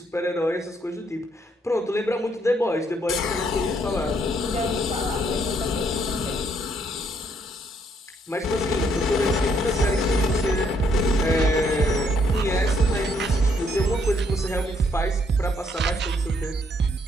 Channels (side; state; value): both; normal; correlation 0.70